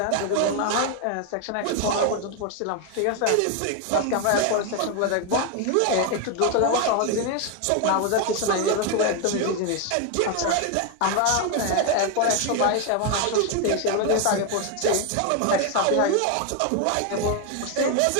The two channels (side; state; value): both; different; correlation 0.01